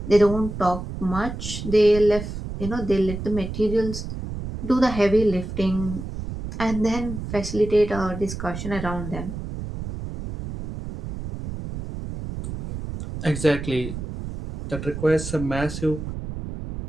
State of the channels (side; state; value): right; noise; rumble, 7 dB below the sound